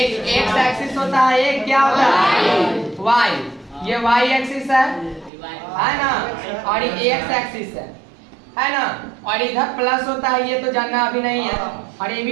एक्स एक्सिस होता है, एक क्या होता है? वाई। ये वाई एक्सिस है ना, और ये एक्स एक्सिस है ना। और इधर प्लस होता है, ये तो जानना अभी नहीं है। और ये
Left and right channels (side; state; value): left; drops out; at 5.3 s